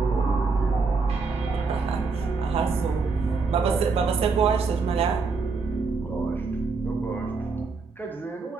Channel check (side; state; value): left; quieter; 4.5 dB